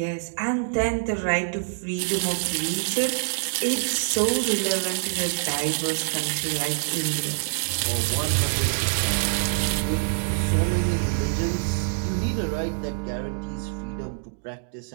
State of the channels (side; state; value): left; silent; digital silence